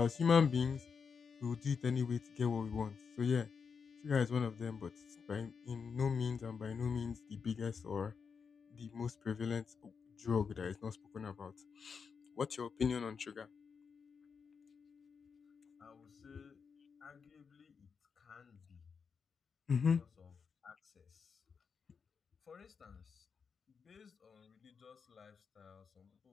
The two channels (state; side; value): quieter; right; 5.9 dB